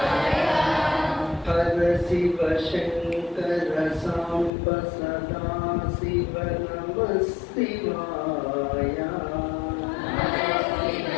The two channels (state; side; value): drops out; right; at 4.5 s